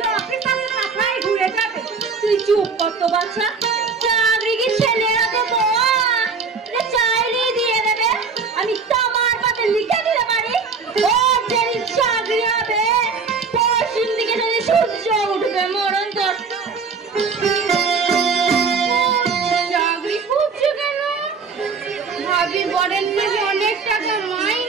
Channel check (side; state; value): left; quieter; 5.1 dB